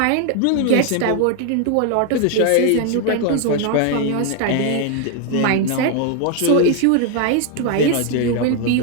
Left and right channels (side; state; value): both; different; correlation 0.00